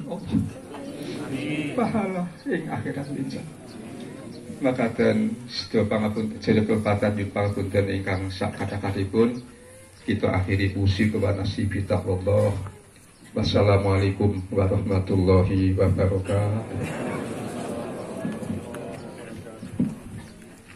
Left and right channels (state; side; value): identical; both; correlation 1.00